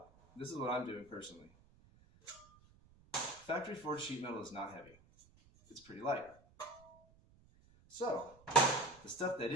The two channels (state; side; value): noise; right; rumble, 27 dB below the sound